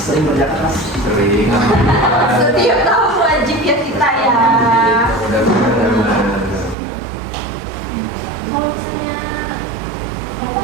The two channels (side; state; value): left; drops out; at 6.8 s